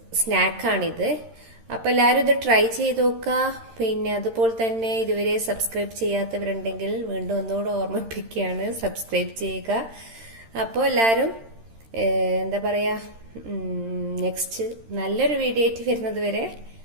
സ്നാക്കാണിത്. അപ്പൊ എല്ലാവരും ഇത് ട്രൈ ചെയ്ത് നോക്കുക. പിന്നെ അതുപോലെ തന്നെ ഇതുവരെ സബ്സ്ക്രൈബ് ചെയ്യാത്തവരുണ്ടെങ്കിൽ വീണ്ടും ഒന്നുകൂടെ ഓർമ്മിപ്പിക്കുകയാണ്, സബ്സ്ക്രൈബ് ചെയ്യുക. അപ്പോൾ എല്ലാവരും എന്താ പറയാ, നെക്സ്റ്റ് നല്ലൊരു വീഡിയോ ആയിട്ട് വരുന്നത് വരെ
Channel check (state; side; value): late; left; 13 ms